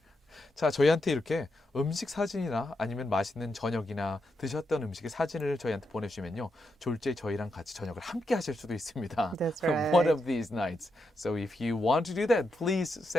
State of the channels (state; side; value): normal; both; correlation 0.84